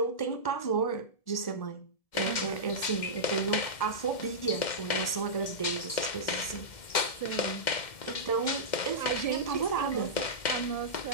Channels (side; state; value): right; late; 2.1 ms